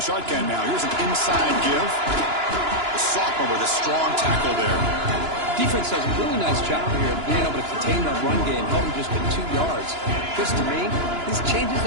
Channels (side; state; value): left; late; 2.9 ms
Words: shotgun now, here's an inside give. The sophomore with a strong tackle there. Defense does a really nice job here of being able to contain that run game, held him just at 2 yards. This, to me, this changes